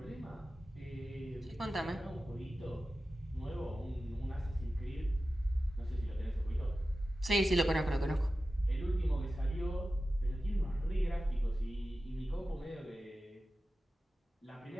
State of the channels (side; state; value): both; normal; correlation 0.94